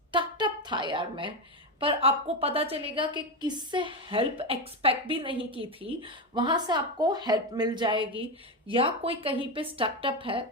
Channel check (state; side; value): normal; both; correlation 0.13